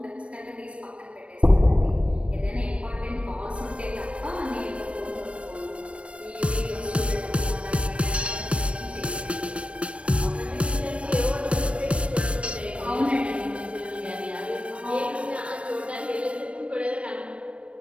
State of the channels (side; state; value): left; late; 0.061 ms